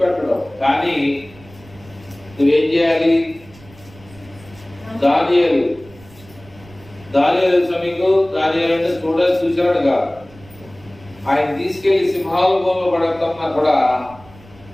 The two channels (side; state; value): right; noise; rumble, 23 dB below the sound